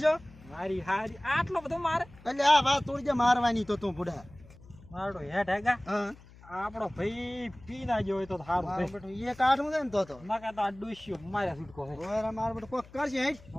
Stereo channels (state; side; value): noise; left; hum, 22 dB below the sound